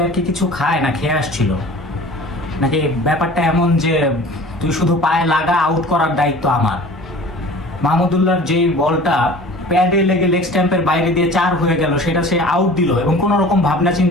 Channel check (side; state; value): both; normal; correlation 0.43